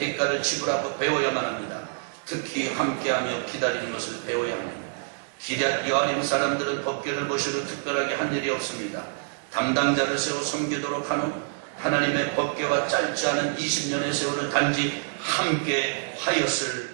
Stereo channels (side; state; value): left; silent; digital silence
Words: 지불하고 배워야만 합니다. 특히 함께하며 기다리는 것을 배워야 합니다. 기럇 여아림 사람들은 법궤를 보시고 특별하게 한 일이 없습니다. 담당자를 세워 섬기도록 한 후 하나님의 법궤와 짧지 않은 20년의 세월을 단지 함께 하였을